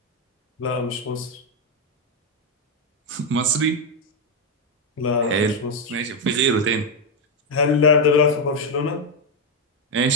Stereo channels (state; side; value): normal; both; correlation 0.03